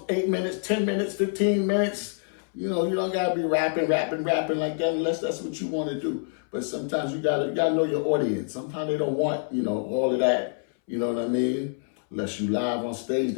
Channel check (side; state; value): right; silent; 60 dB below the other